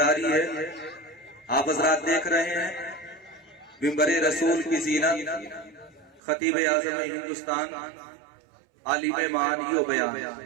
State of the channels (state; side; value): drops out; left; at 6.2 s